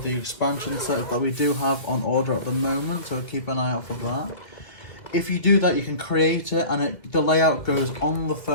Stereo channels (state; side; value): late; right; 2.1 ms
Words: the expansion sets that we do have on order at the moment, so keep an eye out for that. If you do that, you can create it, and the layout goes on the